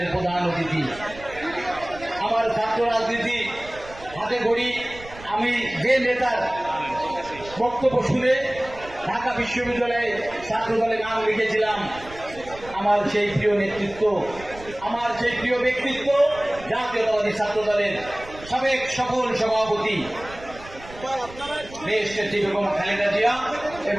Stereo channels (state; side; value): noise; right; rumble, 17 dB below the sound